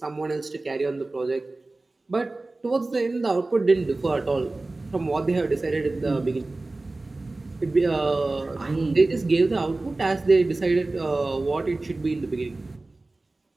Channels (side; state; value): left; quieter; 3.1 dB